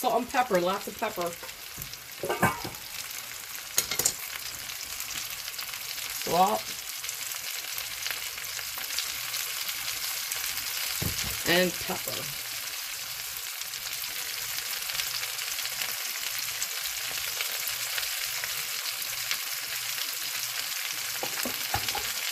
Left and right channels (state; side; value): identical; both; correlation 1.00